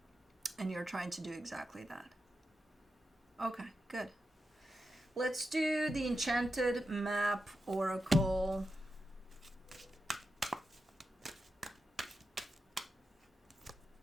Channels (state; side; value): normal; both; correlation 0.88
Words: And you're trying to do exactly that. Okay, good. Let's do the Enchanted Map Oracle.